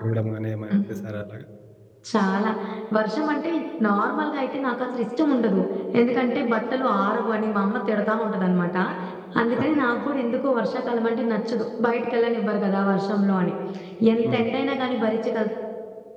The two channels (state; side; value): identical; both; correlation 1.00